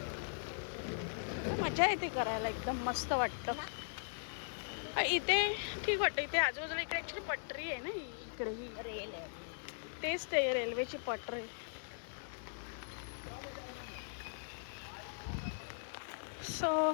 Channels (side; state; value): right; silent; digital silence